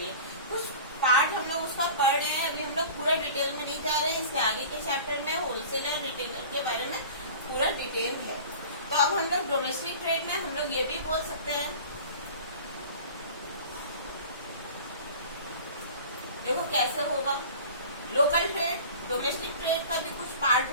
कुछ पार्ट हम लोग उसका पढ़ रहे हैं, अभी हम लोग पूरा डिटेल में नहीं जा रहे हैं। इसके आगे के चैप्टर में होलसेल और रिटेलर के बारे में पूरा डिटेल है। तो अब हम लोग डोमेस्टिक ट्रेड में हम लोग ये भी बोल सकते हैं, देखो कैसे होगा। लोकल ट्रेड, डोमेस्टिक ट्रेड का भी कुछ पार्ट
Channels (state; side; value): inverted; both; correlation -0.40